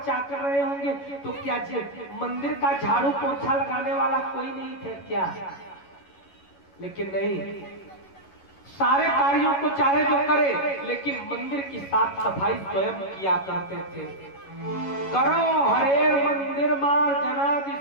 चाकर रहे होंगे, तो क्या मंदिर का झाड़ू पोछा लगाने वाला कोई नहीं थे क्या? लेकिन नहीं, सारे कार्यों को चाहे जो करे, लेकिन मंदिर की साफ सफाई स्वयं किया करते थे। करो हरेर मंदिर मार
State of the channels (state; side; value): late; right; 11 ms